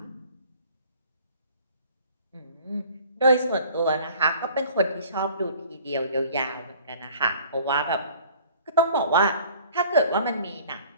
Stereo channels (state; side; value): inverted; both; correlation -0.51